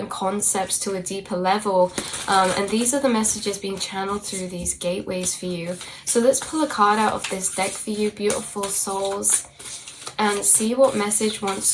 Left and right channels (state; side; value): identical; both; correlation 1.00